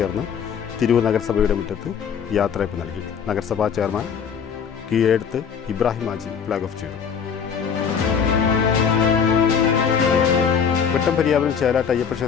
തിരൂർ നഗരസഭയുടെ മുറ്റത്ത് യാത്രയപ്പ് നൽകി. നഗരസഭാ ചെയർമാൻ കീഴെടുത്ത് ഇബ്രാഹിം ഹാജി ഫ്ലാഗ് ഓഫ് ചെയ്തു. വെട്ടംപര്യാവനം ചേലാട്ട് അയ്യപ്പ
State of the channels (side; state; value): right; quieter; 7.0 dB